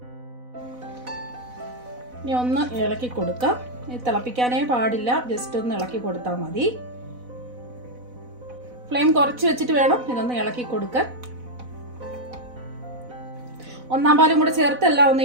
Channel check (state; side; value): late; left; 4.0 ms